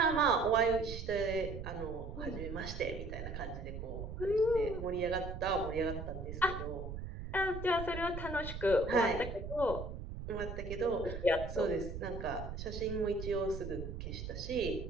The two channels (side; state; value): right; noise; rumble, 7 dB below the sound